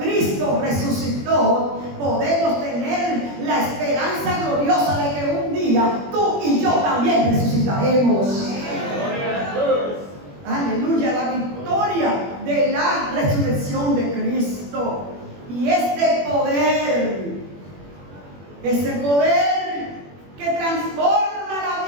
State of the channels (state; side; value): late; left; 21 ms